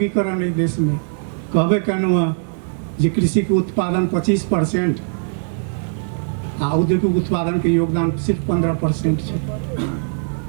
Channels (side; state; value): left; silent; 66 dB below the other